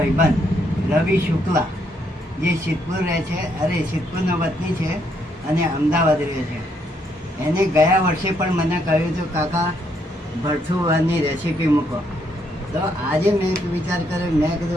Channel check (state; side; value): normal; both; correlation 0.74